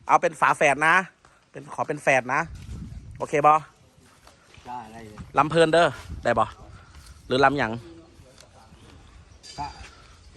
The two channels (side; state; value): both; identical; correlation 1.00